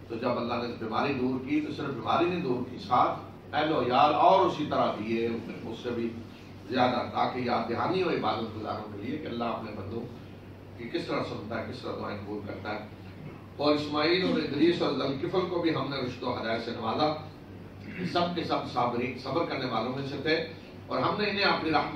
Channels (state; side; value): identical; both; correlation 1.00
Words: تو جب اللہ نے بیماری دور کی تو صرف بیماری نہیں دور کی، ساتھ اہل و عیال اور اسی طرح دیے اس سے بھی زیادہ، تاکہ یاد دہانی ہو عبادت گزاروں کے لیے کہ اللہ اپنے بندوں کی کس طرح سنتا ہے، کس طرح دعائیں قبول کرتا ہے. اور اسماعیل اور ادریس اور ذوالکفل کو بھی ہم نے رشد و ہدایت سے نوازا. سب کے سب صبر کرنے والوں میں سے تھے اور ہم نے انہیں اپنی